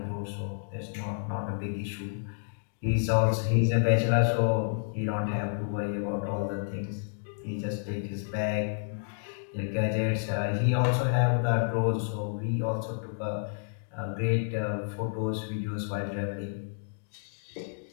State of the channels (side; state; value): right; silent; digital silence